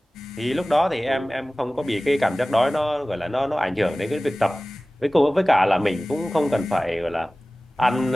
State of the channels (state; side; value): normal; both; correlation 0.98